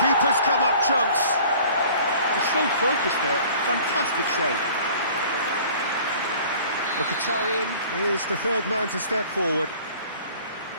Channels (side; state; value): both; inverted; correlation -0.49